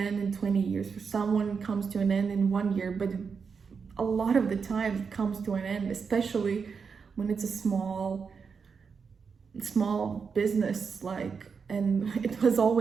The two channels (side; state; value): left; quieter; 5.7 dB